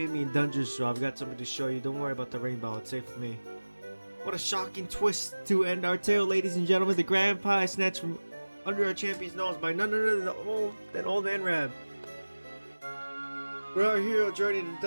me in dungeons, so I've got something to show you. Don't worry about the rainbow. It's safe with me. What a shocking twist to end our tale, ladies and gentlemen. The grand prize snatched from under our champion's nose by none other than old man Rab. We're our hero journey to the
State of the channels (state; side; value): inverted; both; correlation -1.00